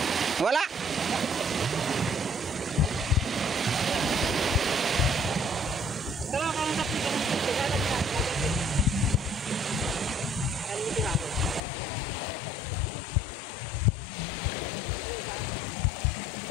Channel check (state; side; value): drops out; right; at 11.6 s